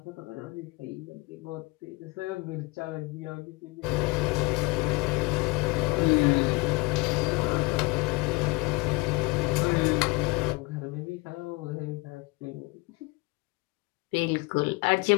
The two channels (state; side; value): quieter; right; 24.7 dB